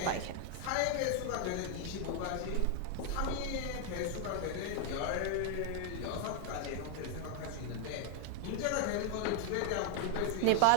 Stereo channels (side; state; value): both; different; correlation 0.00